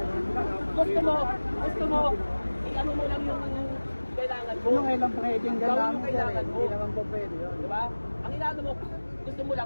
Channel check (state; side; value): inverted; both; correlation -1.00